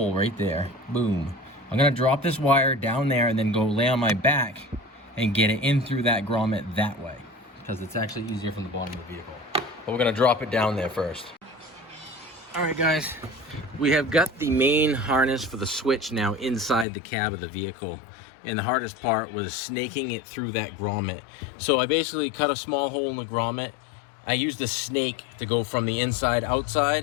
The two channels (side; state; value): right; drops out; at 16.9 s